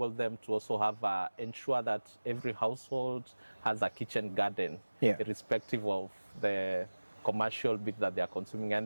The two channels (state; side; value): inverted; both; correlation -1.00